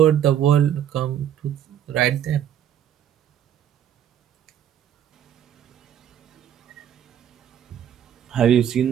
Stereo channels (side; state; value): left; quieter; 10.1 dB